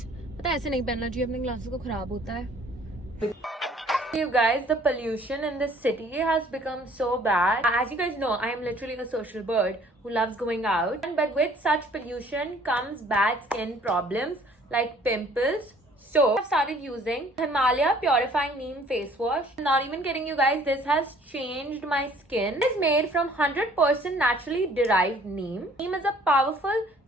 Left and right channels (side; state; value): both; normal; correlation 0.56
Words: पता है ऐसे नहीं पहनना चाहिए, अपने glasses को खराब होता है. You guys, the pollution in this city has become so bad. As you guys know, I am literally a social bird who loves going out. But with such pollution comes bad skin problems like pimples. So I've started using Himalaya Purifying Neem Face Wash. I'm not even kidding you guys, this has changed my skin. It is made from 100% naturally derived neem. Neem is a powerful